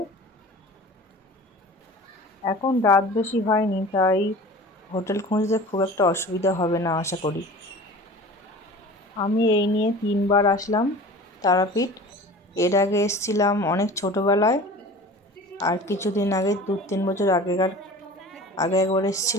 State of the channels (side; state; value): both; normal; correlation 0.40